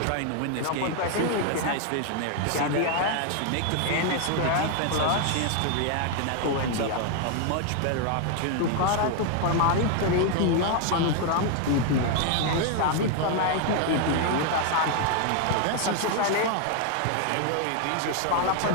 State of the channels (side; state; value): both; different; correlation 0.00